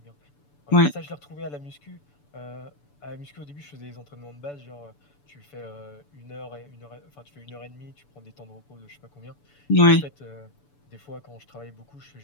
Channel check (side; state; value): right; late; 6.9 ms